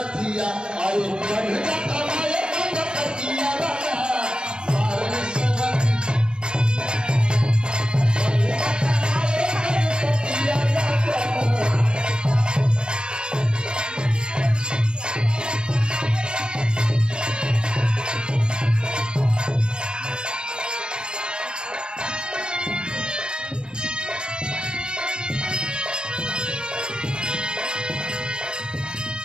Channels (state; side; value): late; left; 0.049 ms